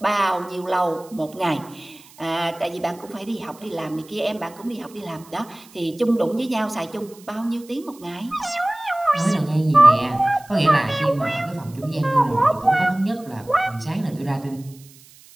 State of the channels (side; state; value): right; noise; hiss, 24 dB below the sound